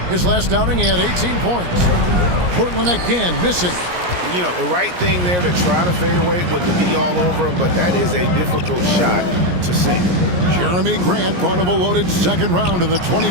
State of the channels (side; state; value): left; late; 17 ms